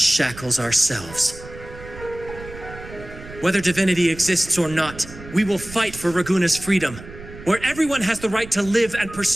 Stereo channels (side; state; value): right; noise; rumble, 15 dB below the sound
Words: ourselves. Whether divinity exists or not, we will fight for Raguna's freedom, where everyone has the right to live and